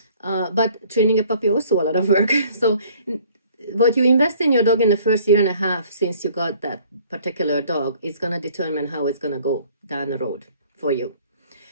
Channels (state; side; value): inverted; both; correlation -0.55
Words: But training a puppy also a lot of work. So what you invest in your dog in the first year and a half since you got that particular dog is going to determine how it's going to go down the road for you.